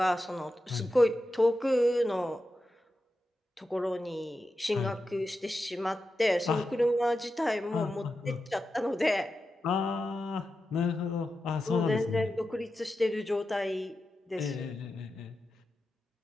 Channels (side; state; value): both; normal; correlation 0.90